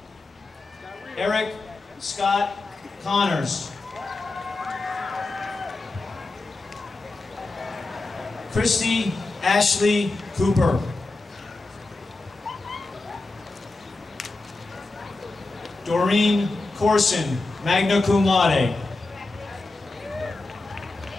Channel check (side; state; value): right; quieter; 3.2 dB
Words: Eric Scott Connors. Christy Ashley Cooper. Doreen Corson, magna cum laude.